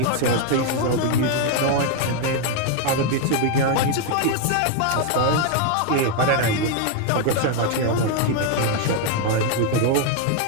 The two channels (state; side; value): different; both; correlation 0.01